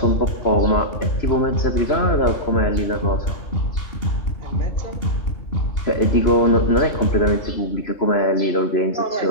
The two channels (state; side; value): late; right; 2.8 ms